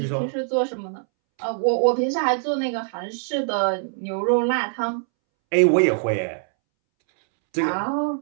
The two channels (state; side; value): silent; left; 63 dB below the other